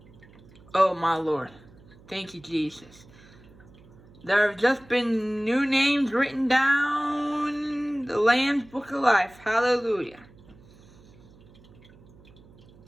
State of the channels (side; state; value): right; noise; hum, 24 dB below the sound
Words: Oh, my Lord. Thank you, Jesus. There have just been new names written down in the Lamb's Book of Life. Hallelujah.